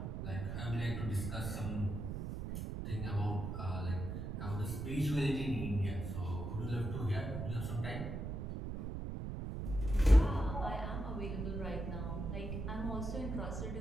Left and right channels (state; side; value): noise; right; rumble, 4 dB below the sound